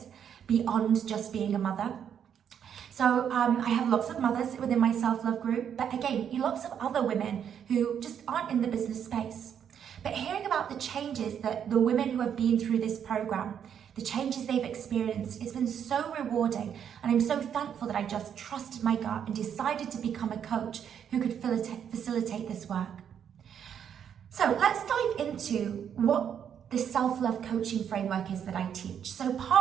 beyond just being a mother. So I have lots of mothers within my self-love group, but again, lots of other women who just aren't in the business space. But hearing about the changes that the women who have been through this program, the changes they've experienced, it's been so rewarding. And I'm so thankful that I just trusted my gut and decided to become a coach who could facilitate this work. So let's dive into what the self-love coaching framework is that I teach. So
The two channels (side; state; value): left; quieter; 8.5 dB